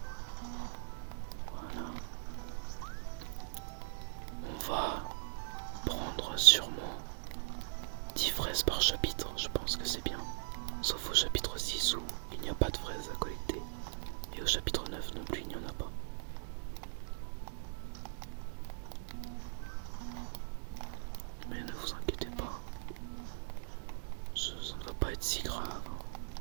Voilà. On va prendre sûrement 10 fraises par chapitre. Je pense que c'est bien. Sauf au chapitre 6 où il n'y a pas de fraises à collecter. Et au chapitre 9 non plus, il n'y en a pas. Mais ne vous inquiétez pas. Ça ne va pas être si grave.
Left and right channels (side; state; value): left; silent; digital silence